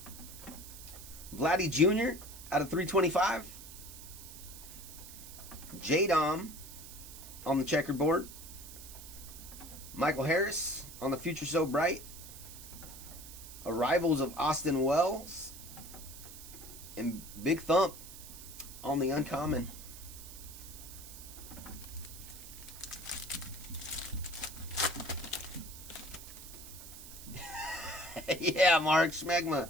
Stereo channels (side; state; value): right; noise; hiss, 14 dB below the sound